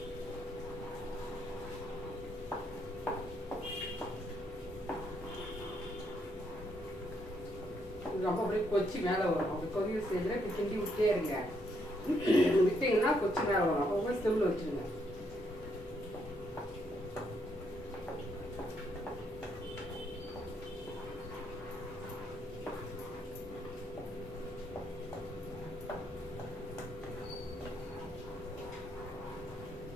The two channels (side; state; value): both; normal; correlation 0.74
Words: ரொம்ப அப்படியே கொச்சி மேலே வரும். அப்படி கொதிய ஸ்டேஜில் இப்போ கிண்டி விட்டே இருங்க. விட்டிங்கன்னா கொச்சி மேலே வரும். அப்போ போய் ஸ்டவ்வில் வச்சுருங்க.